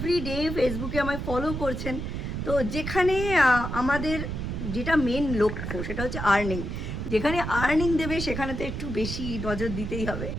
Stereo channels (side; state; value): right; noise; rumble, 4 dB below the sound